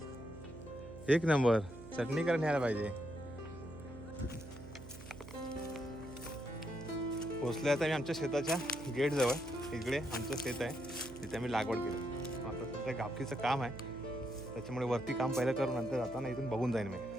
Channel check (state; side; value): noise; right; hum, 14 dB below the sound